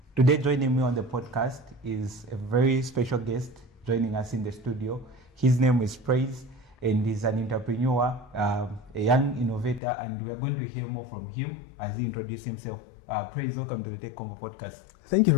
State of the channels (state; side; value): drops out; right; at 9.8 s